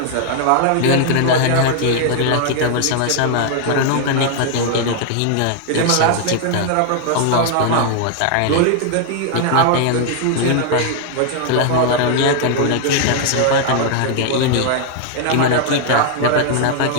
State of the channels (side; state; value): both; different; correlation 0.00